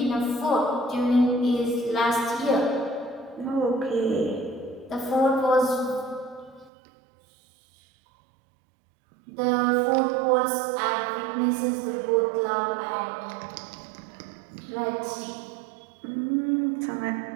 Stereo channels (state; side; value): drops out; left; at 6.7 s